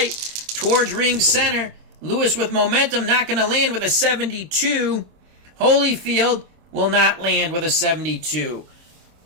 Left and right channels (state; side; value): late; left; 26 ms